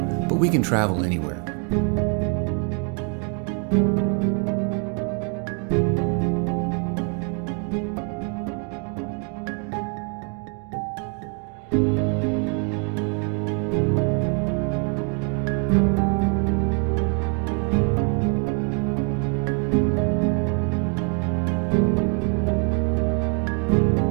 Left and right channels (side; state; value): left; quieter; 38.4 dB